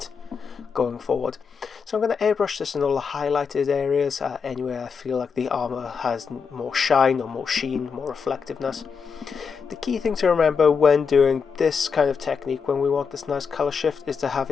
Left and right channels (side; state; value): right; quieter; 5.9 dB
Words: going forward. So I'm going to airbrush this in all the highlighted areas, anywhere I feel like the armor has more shine or more sheen, more reflectiveness. The key thing to remember when doing this kind of technique, when we want this nice color shift, is to have